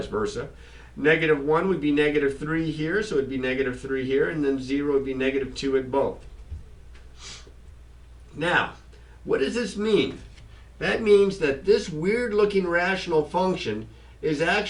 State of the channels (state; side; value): identical; both; correlation 1.00